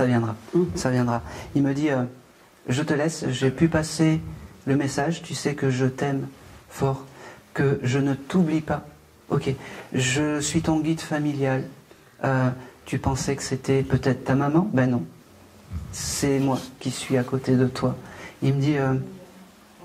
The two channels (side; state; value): both; identical; correlation 1.00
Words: viendra. Ça viendra. Il me dit, je te laisse, j'ai pu passer le message, tu sais que je t'aime fort, que je ne t'oublie pas. Ok, je suis ton guide familial. Tu pensais que c'était peut-être ta maman? Ben non, c'est moi qui suis à côté de toi. Il me dit,